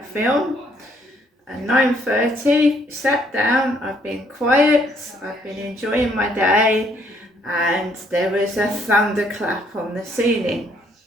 film. At 9:30, sat down, I've been quiet, I've been enjoying my day, and there was a thunderclap on the ceiling.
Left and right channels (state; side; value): normal; both; correlation 0.67